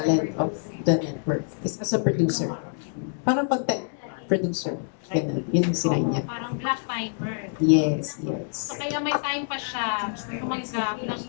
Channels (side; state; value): right; silent; 60 dB below the other